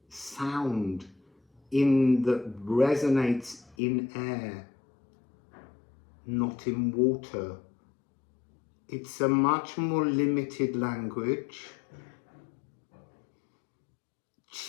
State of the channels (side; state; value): right; drops out; at 3.8 s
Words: sound that resonates in air, not in water. It's a much more limited language.